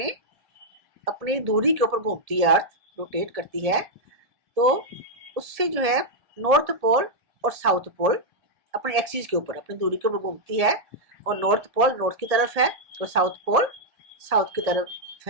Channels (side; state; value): left; late; 1.7 ms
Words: अपनी दूरी के ऊपर घूमती है, अर्थ रोटेट करती है, तो उससे जो है नॉर्थ पोल और साउथ पोल अपने एक्सिस के ऊपर, अपनी दूरी के ऊपर घूमती है। और नॉर्थ पोल नॉर्थ की तरफ है और साउथ पोल साउथ की तरफ